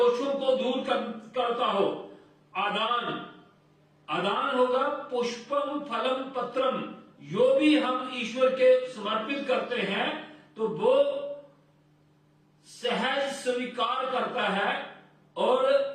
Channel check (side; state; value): both; identical; correlation 1.00